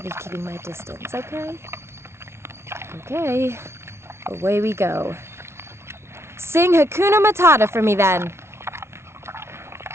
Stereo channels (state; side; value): late; left; 0.13 ms